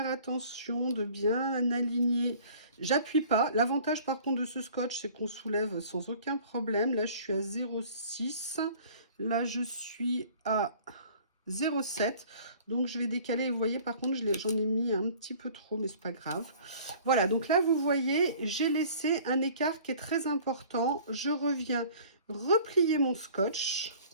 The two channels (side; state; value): both; inverted; correlation -0.49